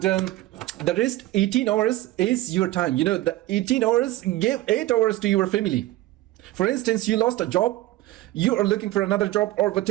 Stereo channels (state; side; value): quieter; left; 16.7 dB